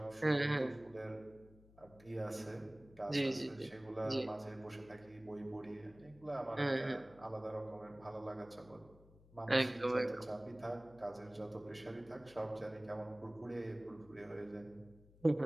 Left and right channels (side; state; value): left; noise; hum, 24 dB below the sound